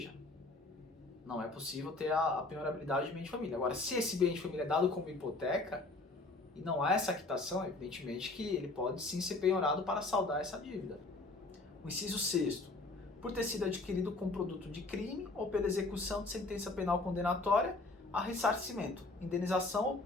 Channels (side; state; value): right; quieter; 3.3 dB